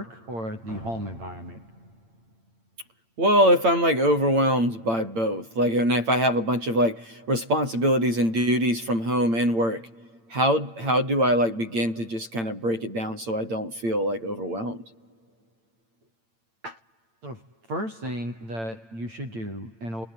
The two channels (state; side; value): late; left; 8.8 ms